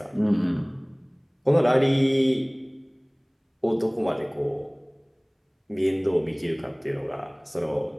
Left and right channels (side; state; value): both; identical; correlation 1.00